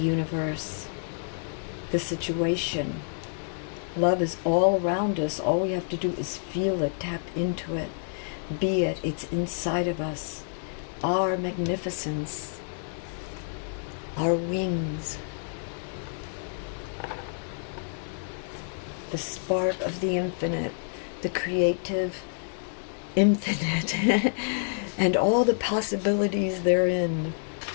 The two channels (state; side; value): silent; right; digital silence